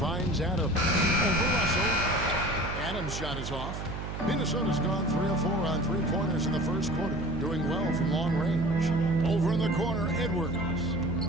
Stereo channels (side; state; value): right; noise; hum, 6 dB below the sound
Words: Adams. Over Russell. Adams' shot is off. Minnesota's gone 3 of 4 on 3-pointers in the first quarter. Doing well from long range. Over in the corner, Edwards.